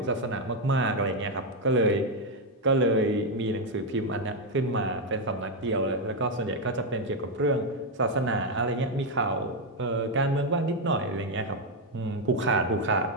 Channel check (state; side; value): normal; both; correlation 0.03